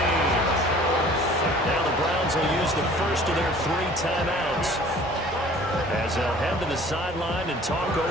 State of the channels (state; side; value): normal; both; correlation 0.49